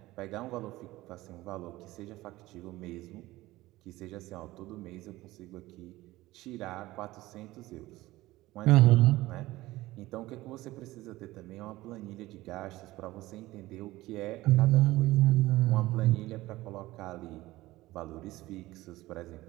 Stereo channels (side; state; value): left; quieter; 17.9 dB